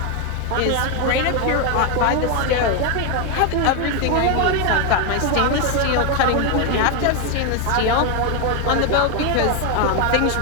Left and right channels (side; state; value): both; different; correlation 0.01